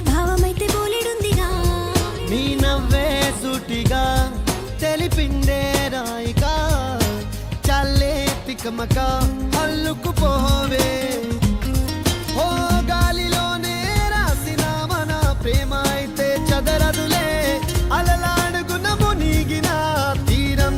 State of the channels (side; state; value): both; identical; correlation 1.00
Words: భావమైతే బోలెడుందిగా. నీ నవ్వే సూటిగా తెలిపిందే రాయిగా, చల్లే తికమక అల్లుకుపోవే. ఓ గాలిలోనే రాసిన మన ప్రేమ అయితే చదరదులే, అలలాడుగున మునిగిన తీరం